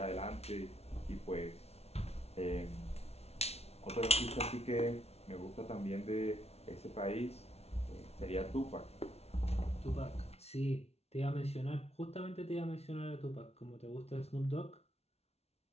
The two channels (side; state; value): right; late; 0.31 ms